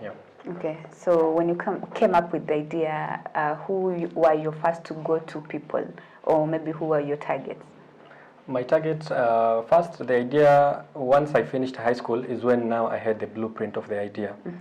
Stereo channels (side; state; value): both; identical; correlation 1.00